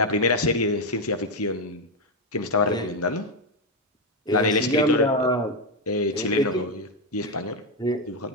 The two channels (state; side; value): normal; both; correlation 0.05